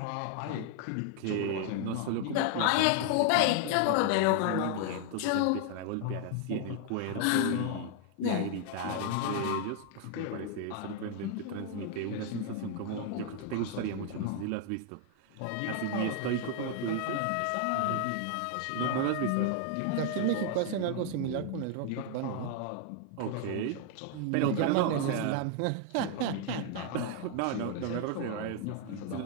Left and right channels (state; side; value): different; both; correlation 0.00